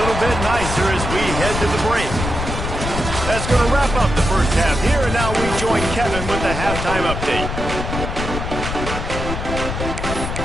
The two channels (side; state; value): left; noise; rumble, 4 dB below the sound